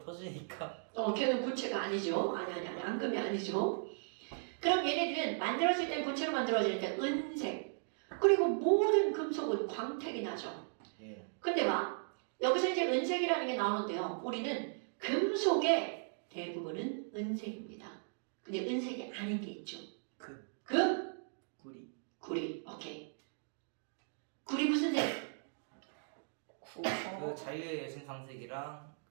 걔는 고체가 아니죠. 아니, 앙금이 아니죠. 그럼 얘네들은 만들어질 땐 고체로 만들어지는데 은색. 그리고 모든 금속은 광택이 나죠. 예. 근데 봐. 여기서 이제 은색이라는 게 나오는데요. 우리는 금속의 대부분은 은색입니다. 근데 은색이 아닌 게 있죠. 금? 구리 구리. 오케이. 구리 무슨 색? 그 자유의 여신상색이랑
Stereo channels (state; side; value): silent; left; digital silence